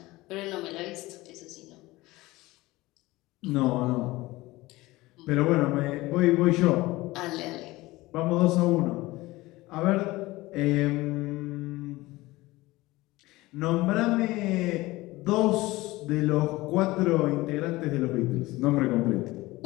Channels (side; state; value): right; quieter; 19.6 dB